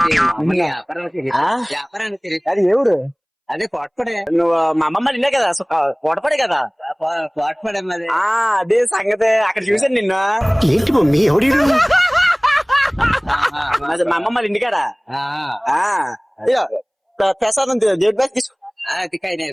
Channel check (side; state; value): both; identical; correlation 1.00